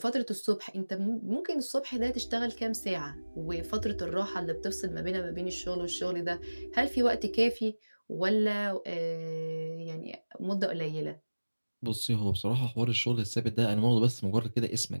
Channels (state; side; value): inverted; both; correlation -1.00